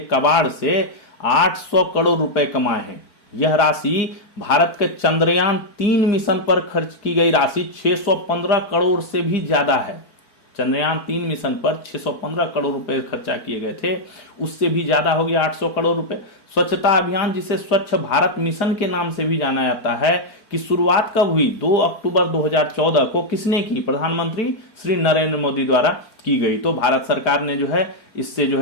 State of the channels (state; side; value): late; right; 4.5 ms